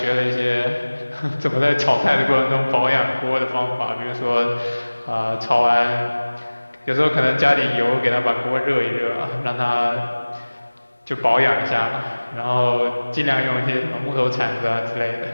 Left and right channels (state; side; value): inverted; both; correlation -1.00